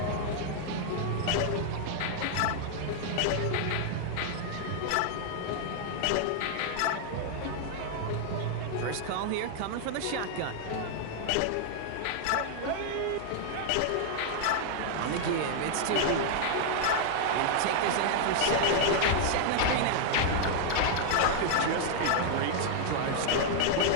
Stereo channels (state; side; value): different; both; correlation 0.00